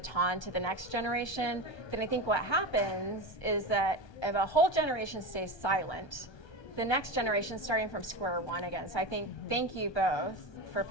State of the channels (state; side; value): late; right; 1.2 ms